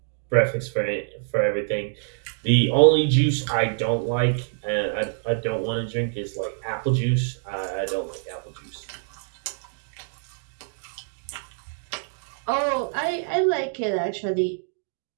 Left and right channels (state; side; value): silent; left; digital silence